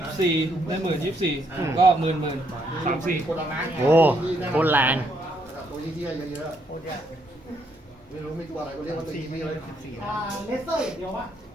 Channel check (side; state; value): both; normal; correlation 0.73